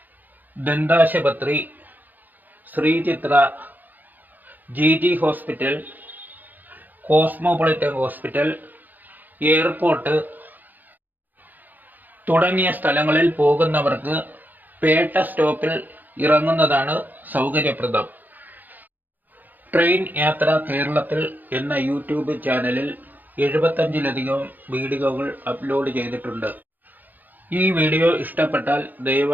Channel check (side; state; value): left; late; 0.085 ms